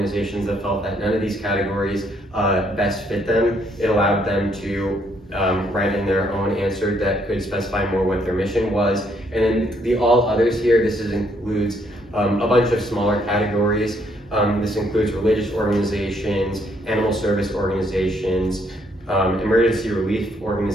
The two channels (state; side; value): normal; both; correlation 0.70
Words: that felt that none of these categories best fit them. It allowed them to write in their own answer that could specify more what their mission was. And then the all others here, includes a bunch of smaller categories. This includes religious organizations, animal service organizations, emergency relief